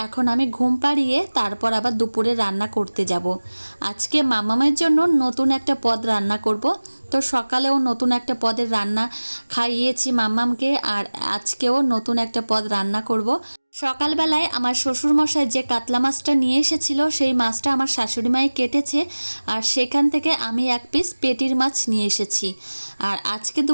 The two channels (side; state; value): both; inverted; correlation -1.00